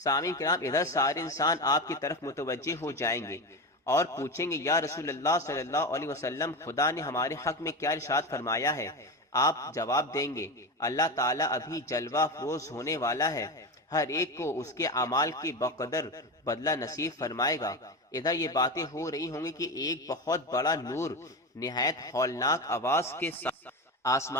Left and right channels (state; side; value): normal; both; correlation 0.21